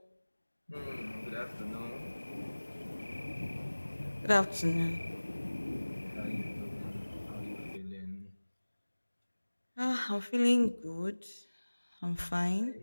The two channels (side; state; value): both; inverted; correlation -1.00